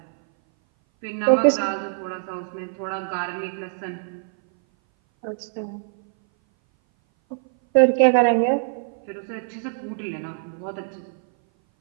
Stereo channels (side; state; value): left; silent; 58 dB below the other